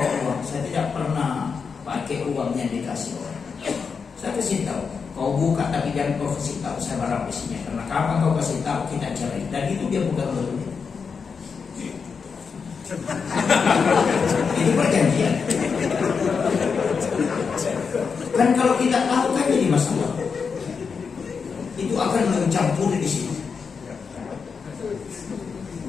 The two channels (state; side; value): quieter; right; 5.6 dB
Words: uang. Saya tidak pernah pakai uangnya dikasih orang. Saya kasih tahu, kau buka tapi jangan kau kasih tahu saya berapa isinya. Karena kapan kau kasih tahu kita cari, dan itu dia bukan betul. Itu perjanjian. Kan kalau kita tahu kan jadi masalah. Itu akan mencampuri di sini.